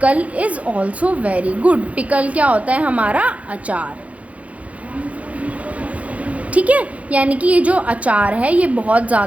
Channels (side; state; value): left; late; 0.066 ms